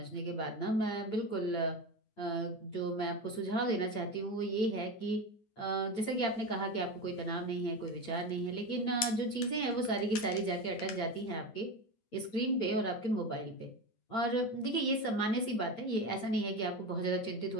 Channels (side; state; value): right; late; 9.8 ms